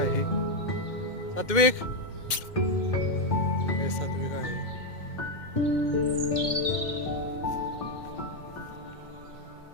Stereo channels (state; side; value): late; right; 2.1 ms